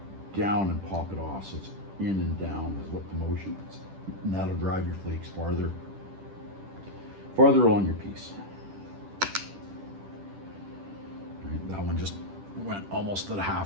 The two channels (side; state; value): left; late; 10 ms